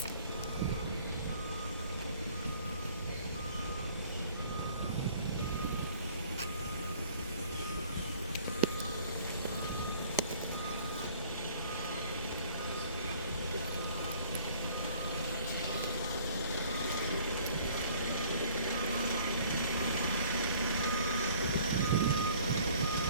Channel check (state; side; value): inverted; both; correlation -0.55